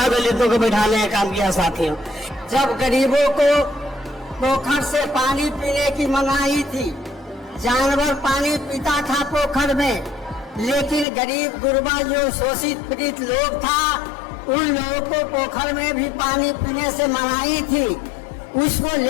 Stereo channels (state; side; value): drops out; right; at 11.1 s